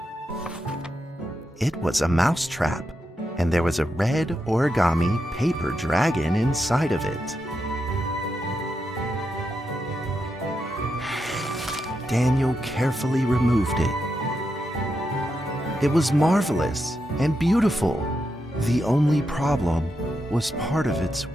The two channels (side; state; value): both; normal; correlation 0.85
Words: It was a mousetrap, and there was a red origami paper dragon inside of it. Daniel carefully removed it. It was marvelous and beautiful. The only problem was part of its